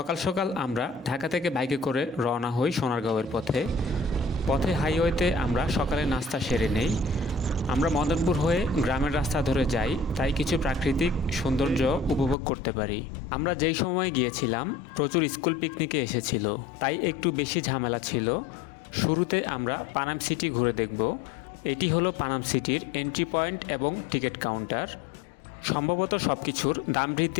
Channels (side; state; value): right; drops out; at 12.4 s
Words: সকাল আমরা ঢাকা থেকে বাইকে করে রওনা হই সোনারগাঁওয়ের পথে। হাইওয়েতে আমরা সকালে নাস্তা সেরে নেই। আমরা মদনপুর হয়ে গ্রামের রাস্তা ধরে যাই, তাই কিছু প্রাকৃতিক সৌন্দর্য উপভোগ করতে পারি। আমরা যেই সময় গিয়েছিলাম প্রচুর স্কুল পিকনিকে এসেছিল, তাই একটু বেশি ঝামেলা ছিল। শুরুতে আমরা পানাম সিটি ঘুরে দেখব। এটি হলো পানাম সিটির এন্ট্রি পয়েন্ট এবং টিকিট কাউন্টার। সম্ভবত সব কিছুর দাম